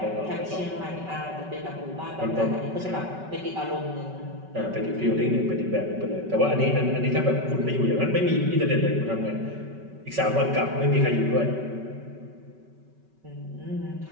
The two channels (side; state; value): left; late; 5.3 ms